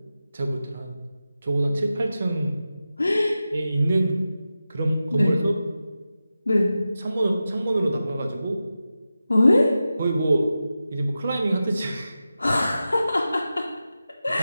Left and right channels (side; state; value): both; inverted; correlation -0.92